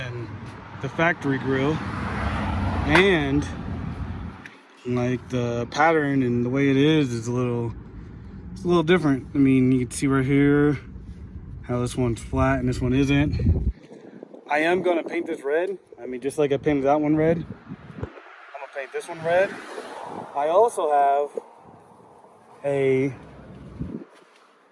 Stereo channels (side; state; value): both; identical; correlation 1.00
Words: the factory grill, and like the pattern and the way it is a little different. I mean, you can see right here how this one's flat and this one isn't. I am gonna paint this red. I mean, just like I painted that one red, I'm gonna paint this one red. I also have a